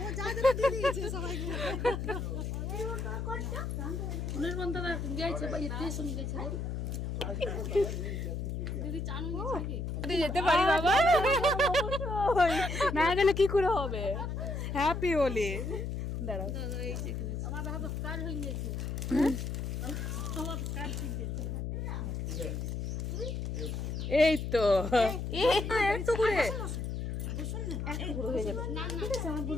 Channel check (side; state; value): left; noise; hum, 3 dB below the sound